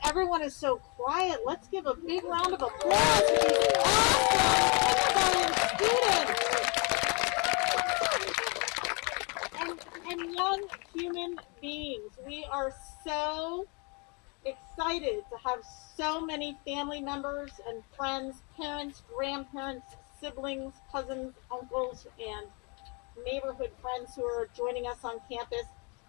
everyone is so quiet. Let's give a big round of applause to these awesome students and young human beings. We are so excited to have so many family members and friends, parents, grandparents, siblings, cousins, uncles, and neighborhood friends who are joining us on campus.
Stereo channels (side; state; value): right; quieter; 32.4 dB